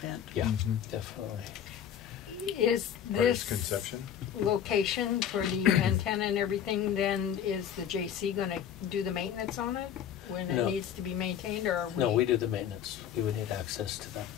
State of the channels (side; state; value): right; quieter; 9.2 dB